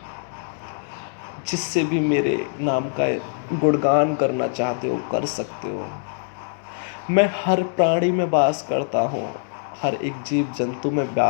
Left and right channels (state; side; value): silent; right; digital silence